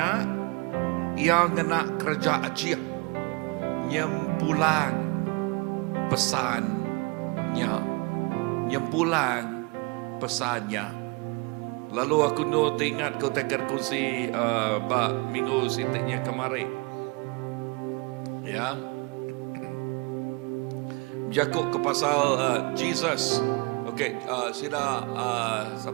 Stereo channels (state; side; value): quieter; left; 29.3 dB